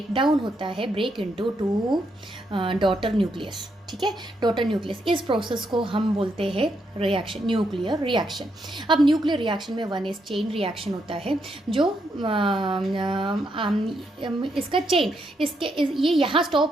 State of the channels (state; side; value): normal; both; correlation 0.79